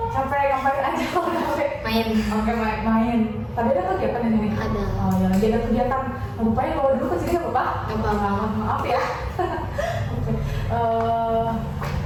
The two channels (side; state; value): both; identical; correlation 1.00